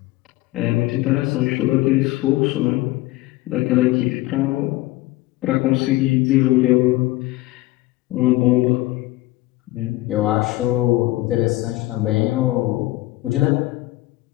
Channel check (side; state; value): right; quieter; 18.4 dB